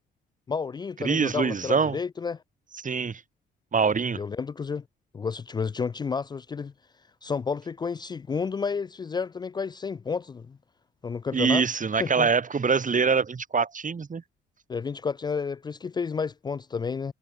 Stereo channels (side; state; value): both; normal; correlation 0.38